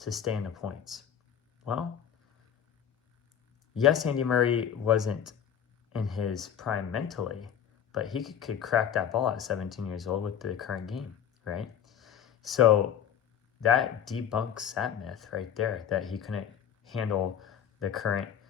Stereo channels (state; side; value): quieter; right; 9.0 dB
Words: stay in the points. Well, yes, Andy Murray wasn't in his prime mentally, but he could crack that ball at 17 years old with the current game, right? So that debunks that myth right there, that he couldn't handle the current